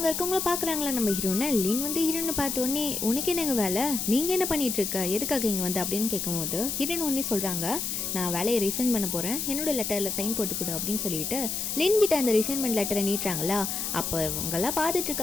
இருக்கவங்கள பார்க்குறாங்களா நம்ம ஹீரோனை. லின் வந்து ஹீரோனை பார்த்தோன்னே, உனக்கு என்னங்க வேலை, நீங்கள் என்ன பண்ணிட்டு இருக்க, எதுக்காக இங்கே வந்து அப்படின்னு கேட்கும்போது ஹீரோயின் ஒன்னே சொல்கிறாங்க, நான் வேலையை ரிசைன் பண்ண போகிறேன், என்னோட லெட்டரில் சைன் போட்டு கொடு அப்படின்னு சொல்லிட்டு லின் கிட்ட அந்த ரிசைன்மெண்ட் லெட்டரை நீட்டுறாங்களா. அப்போ இவங்கெல்லாம் பார்த்துட்டு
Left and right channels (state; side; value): noise; left; hiss, 2 dB below the sound